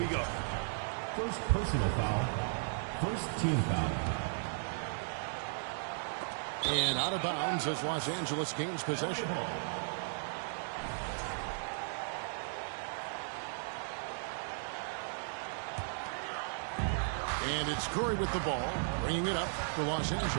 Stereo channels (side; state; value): left; silent; digital silence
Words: go. First personal foul. First team foul. And out of bounds as Los Angeles gains possession. And it's Curry with the ball, bringing it up for Los